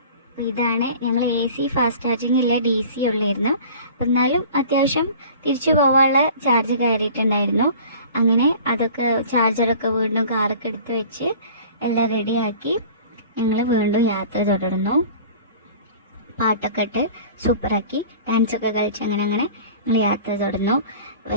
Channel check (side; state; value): both; inverted; correlation -0.44